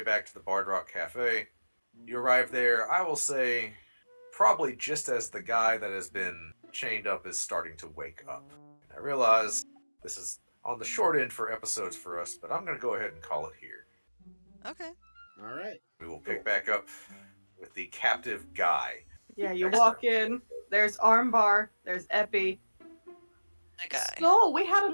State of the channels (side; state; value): both; inverted; correlation -1.00